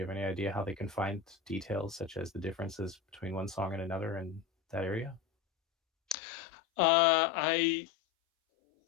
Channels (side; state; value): right; drops out; at 6.2 s